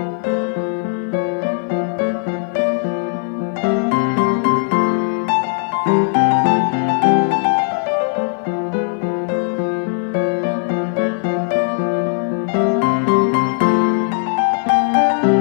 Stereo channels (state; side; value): silent; right; 60 dB below the other